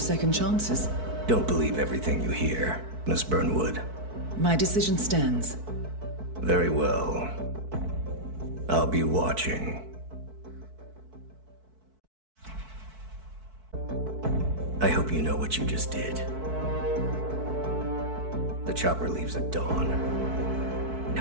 chances. Don't believe everything you hear, Miss Burnwood. My decision stands. Very well. I'll be watching. I hope you know what you just did. The chopper leaves at dawn.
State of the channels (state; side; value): late; left; 4.6 ms